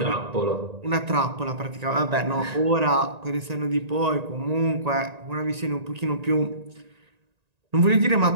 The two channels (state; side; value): late; left; 1.9 ms